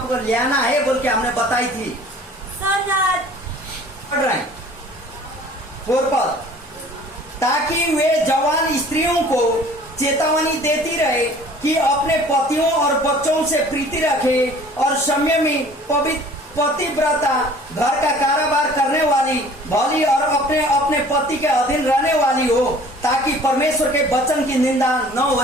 को ले आना है बोल के हमने बताई थी। So that पढ़ रहे हैं 4 पद, ताकि वे जवान स्त्रियों को चेतावनी देती रहे कि अपने पतियों और बच्चों से प्रीति रखे और संयमी पतिव्रता, घर का कारोबार करने वाली, भली और अपने अपने पति के अधीन रहने वाली हो, ताकि परमेश्वर के वचन की निंदा न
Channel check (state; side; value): normal; both; correlation 0.50